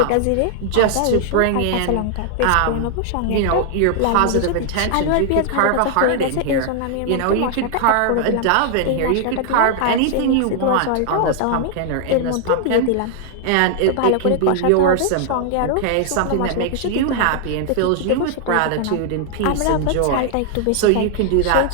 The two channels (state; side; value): different; both; correlation 0.00